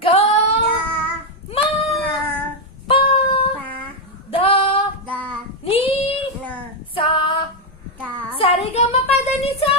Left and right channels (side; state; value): both; normal; correlation 0.03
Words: గో మా పా దా నీ సా సరిగమ పదని సా